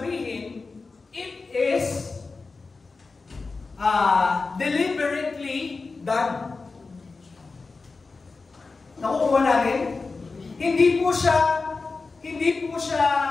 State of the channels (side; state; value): right; quieter; 4.1 dB